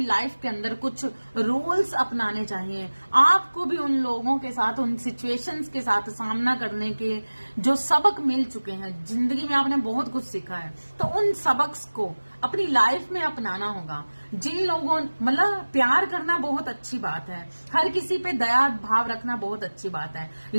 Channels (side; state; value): both; inverted; correlation -1.00